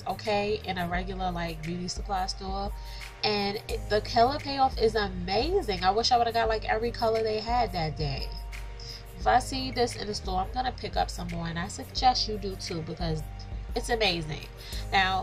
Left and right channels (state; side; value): identical; both; correlation 1.00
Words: okay, in a regular like beauty supply store. And the color payoff is amazing. I wish I would have got like every color they had that day. If I see this in the store, I'm gonna pick up some more, and I suggest you do too, because it's amazing.